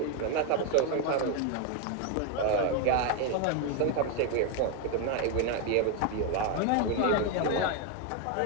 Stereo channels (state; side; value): different; both; correlation 0.01